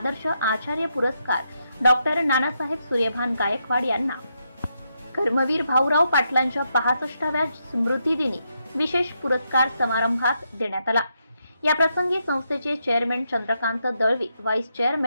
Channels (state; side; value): inverted; both; correlation -0.81